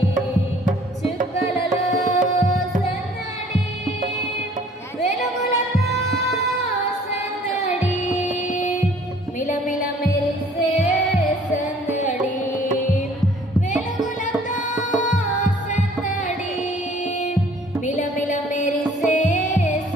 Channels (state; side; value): normal; both; correlation 0.55